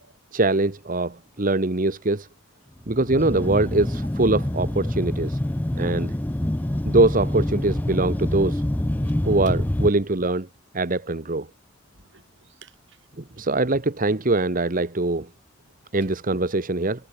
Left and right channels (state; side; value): normal; both; correlation 0.36